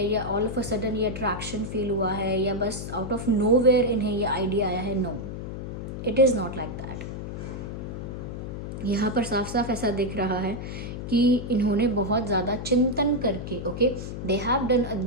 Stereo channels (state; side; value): noise; left; hum, 7 dB below the sound